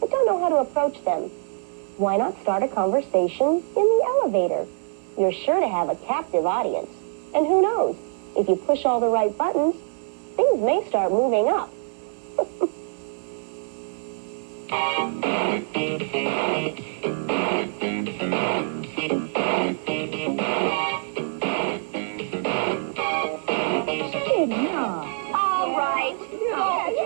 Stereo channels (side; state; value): left; silent; digital silence